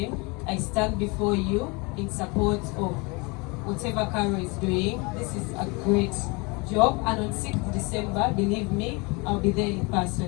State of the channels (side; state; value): right; quieter; 28.2 dB